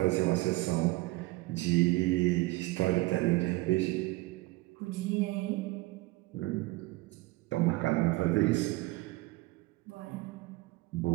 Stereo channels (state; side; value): quieter; left; 20.9 dB